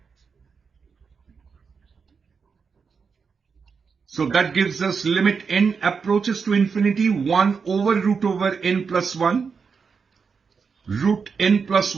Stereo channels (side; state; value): left; quieter; 5.6 dB